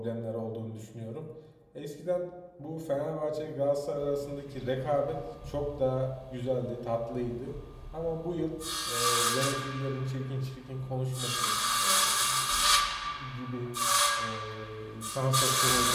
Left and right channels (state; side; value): identical; both; correlation 1.00